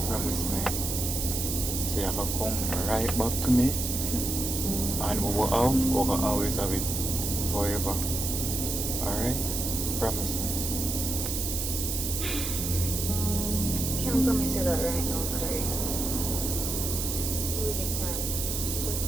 promise me. So you have to come right back to me. And we will always have it forever. Alright? Promise me. Can't promise you that right now, Kareem. Really can't.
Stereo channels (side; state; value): right; noise; hiss, 2 dB below the sound